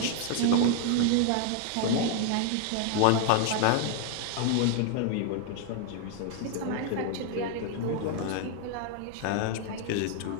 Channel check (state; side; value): different; both; correlation 0.00